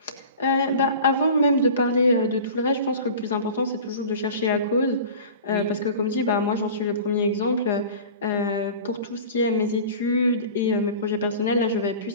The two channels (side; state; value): both; inverted; correlation -0.38